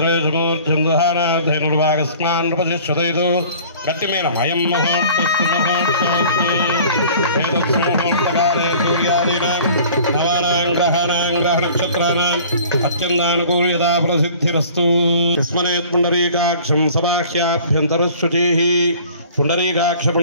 नृपतिष्ठतैतो गट्टिमेन अयं मुहूर्तकाले सूर्यादीनां नवानां ग्रहाणां ग्रहनक्षत्राणाम् अत्यन्तानुकूल्यता प्रसिद्धिरस्तु स्मरेत् पुण्डरीकाक्षं सबाह्याभ्यन्तरशुचिः पुण्डरीकाक्ष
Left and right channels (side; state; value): both; inverted; correlation -0.48